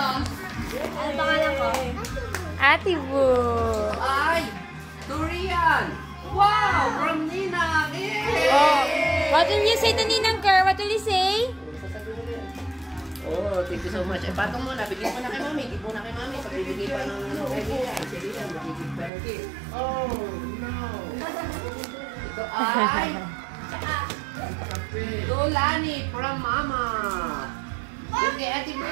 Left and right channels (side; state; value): left; drops out; at 19.1 s